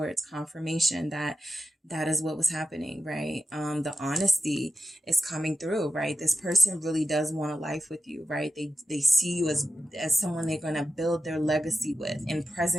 confirmation that is what was happening, right? The honesty is coming through, right? This person really does want a life with you, right? They see you as someone they're going to build their legacy with, in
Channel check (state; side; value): normal; both; correlation 0.92